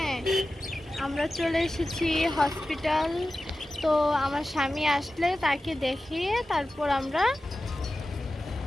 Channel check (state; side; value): normal; both; correlation 0.94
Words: আমরা চলে এসেছি হসপিটাল। তো আমার স্বামী আসলে তাকে দেখিয়ে তারপর আমরা